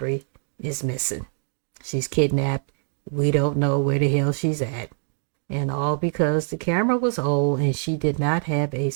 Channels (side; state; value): left; silent; digital silence